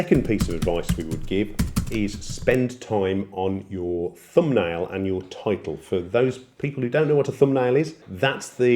piece of advice we would give is spend time on your thumbnail and your title. For those people who don't know what a thumbnail is, that's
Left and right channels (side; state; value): both; identical; correlation 1.00